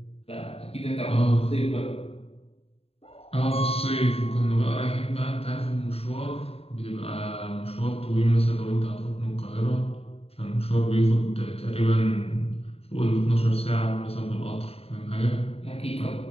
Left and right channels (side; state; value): right; late; 0.29 ms